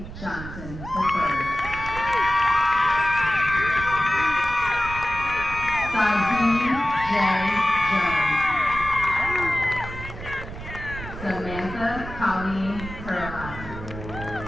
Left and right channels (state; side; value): noise; right; rumble, 11 dB below the sound